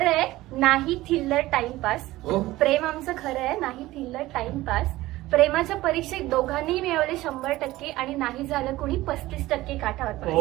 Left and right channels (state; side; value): quieter; left; 17.5 dB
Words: आहे नाही थिल्लर टाइमपास. प्रेम आमचं खरं आहे नाही थिल्लर टाइमपास. प्रेमाच्या परीक्षेत दोघांनी मिळवले 100% आणि नाही झालं कुणी 35% काठावर.